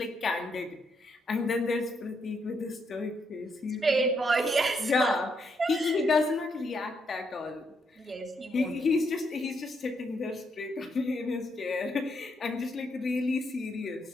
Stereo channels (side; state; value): both; normal; correlation 0.77